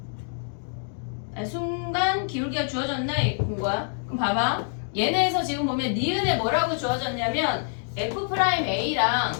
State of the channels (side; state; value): right; silent; 60 dB below the other